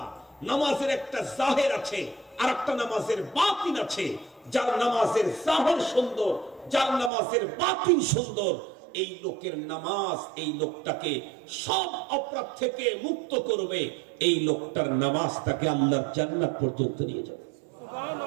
নামাজের একটা জাহির আছে আর একটা নামাজের বাতিন আছে। যার নামাজের জাহির সুন্দর, যার নামাজের বাতিন সুন্দর, এই লোকের নামাজ এই লোকটাকে সব অপরাধ থেকে মুক্ত করবে। এই লোকটার নামাজ তাকে আল্লাহর জান্নাত পর্যন্ত নিয়ে যাবে।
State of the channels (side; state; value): left; drops out; at 7.1 s